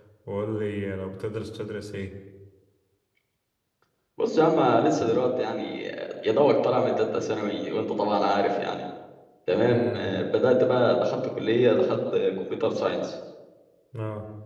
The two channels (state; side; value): identical; both; correlation 1.00